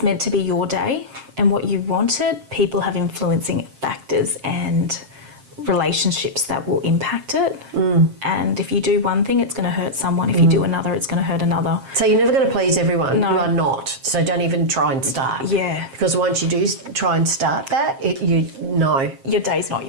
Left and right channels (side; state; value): left; late; 7.5 ms